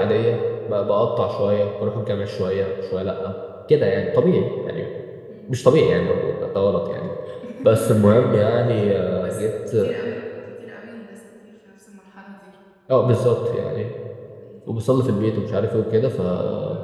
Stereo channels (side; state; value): both; identical; correlation 1.00